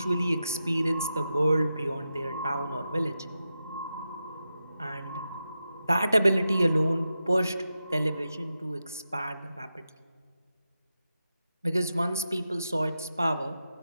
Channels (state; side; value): inverted; both; correlation -0.89